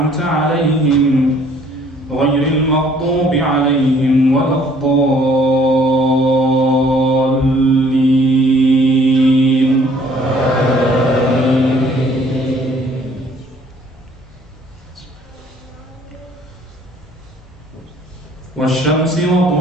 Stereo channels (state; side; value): normal; both; correlation 0.59